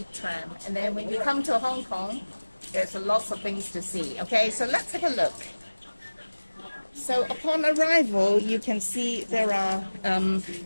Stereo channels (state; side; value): inverted; both; correlation -1.00